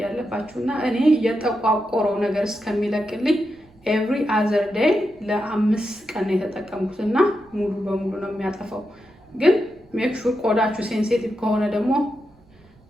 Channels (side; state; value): right; noise; rumble, 30 dB below the sound